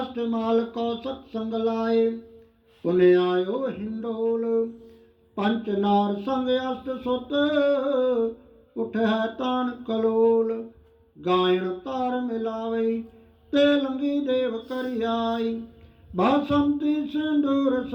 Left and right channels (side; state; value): both; identical; correlation 1.00